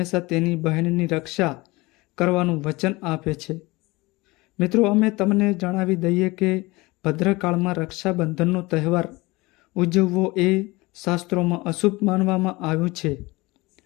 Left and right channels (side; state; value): right; quieter; 22.4 dB